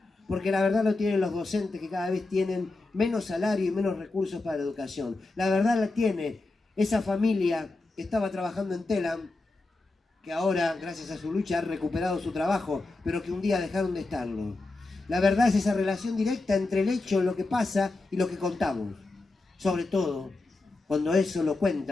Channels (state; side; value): quieter; right; 3.2 dB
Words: Porque la verdad lo tienen los docentes que cada vez tienen menos salario y menos recursos para la educación. La verdad la tiene esa familia que estaba trabajando en Telam, que ahora, gracias a su lucha, ha recuperado su trabajo, pero que un día dejaron de estarlo. La verdad es esa relación directa entre el hecho, lo que pasa y lo que contamos. Sobre todo, cuando eso lo